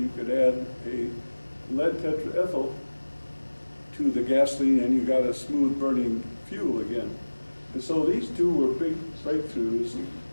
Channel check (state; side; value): inverted; both; correlation -1.00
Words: could add a lead tetraethyl to the gasoline and you got a smooth burning fuel again. And so these two were big breakthroughs,